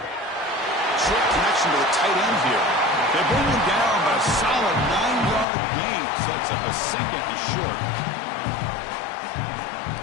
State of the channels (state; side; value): drops out; right; at 5.5 s